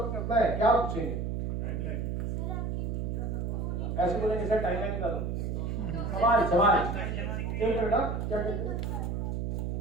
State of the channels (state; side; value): noise; right; hum, 1 dB below the sound